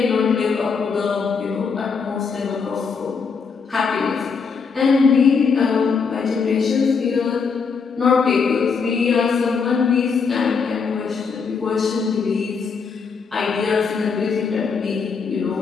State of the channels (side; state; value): right; quieter; 5.5 dB